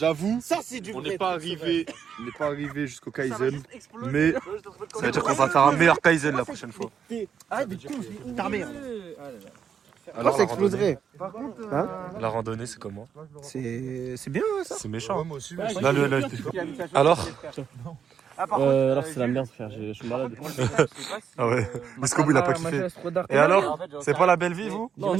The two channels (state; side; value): quieter; left; 7.6 dB